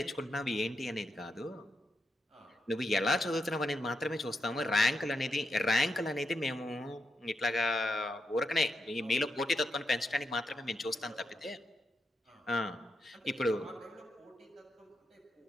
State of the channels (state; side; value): normal; both; correlation 0.84